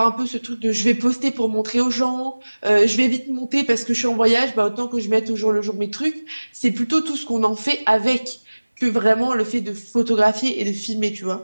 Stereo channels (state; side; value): inverted; both; correlation -1.00